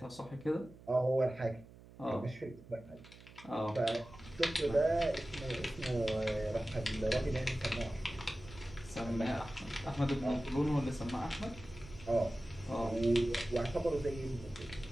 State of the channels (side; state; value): right; noise; hum, 20 dB below the sound